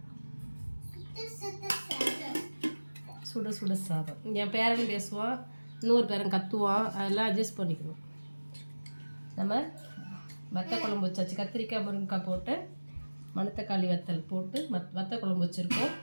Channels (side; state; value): both; inverted; correlation -1.00